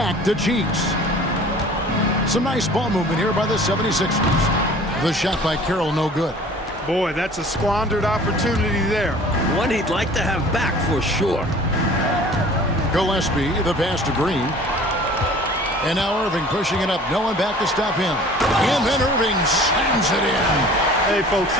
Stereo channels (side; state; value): both; normal; correlation 0.47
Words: to Cheeks. Some nice ball movement here by the 76ers. The shot by Carroll, no good. Boy, that's a squandered opportunity there. One he'd like to have back for sure. Gillespie, the pass to Green. And now Irving pushing it up. No one back to stop him. And then Irving slams it in. Hey, folks,